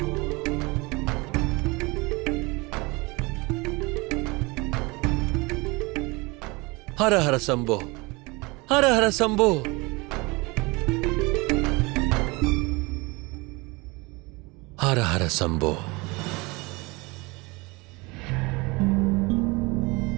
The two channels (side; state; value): left; quieter; 25.3 dB